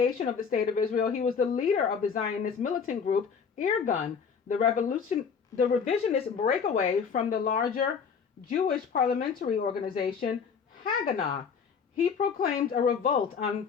of the State of Israel, he was the leader of the Zionist militant group Irgun, the revisionist breakaway from the larger Jewish parliamentary organization Haganah. He proclaimed a revolt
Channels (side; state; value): right; quieter; 6.2 dB